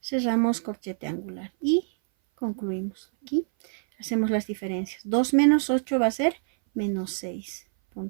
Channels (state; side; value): silent; left; 58 dB below the other